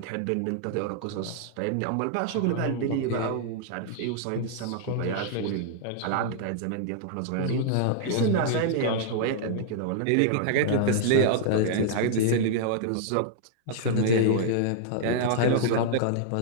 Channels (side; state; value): both; different; correlation -0.01